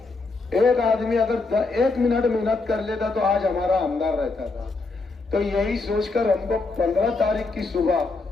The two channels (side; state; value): right; quieter; 3.7 dB